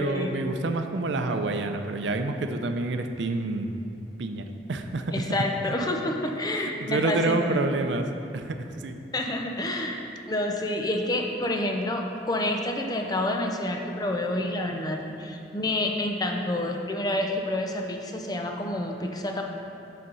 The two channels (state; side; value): normal; both; correlation 0.40